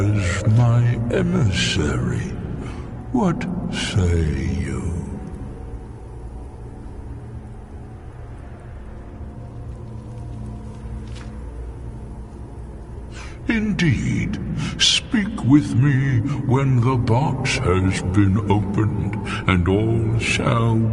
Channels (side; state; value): both; identical; correlation 1.00